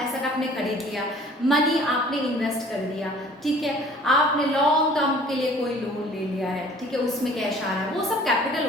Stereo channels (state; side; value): normal; both; correlation 0.51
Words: एसेट आपने खरीद लिया, मनी आपने इन्वेस्ट कर दिया. ठीक है, आपने लॉन्ग टर्म के लिए कोई लोन ले लिया है. ठीक है, उसमें कैश आ रहा है. वो सब कैपिटल